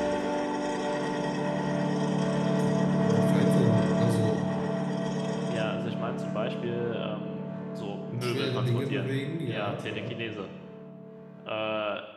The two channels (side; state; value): both; identical; correlation 1.00